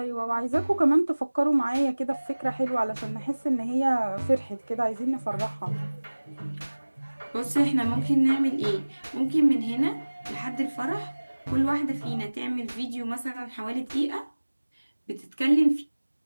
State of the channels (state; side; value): inverted; both; correlation -1.00